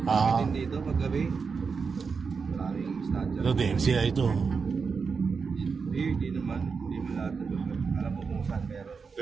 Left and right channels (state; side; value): quieter; left; 5.3 dB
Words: Ah. Dito, paggabi. Maraming statue. Ito, DMCI ito. Hindi naman. Hindi mo lahat na lugar. Alam mo kung saan meron.